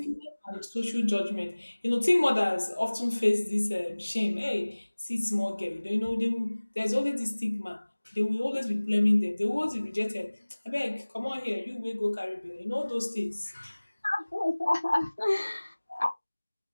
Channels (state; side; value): inverted; both; correlation -1.00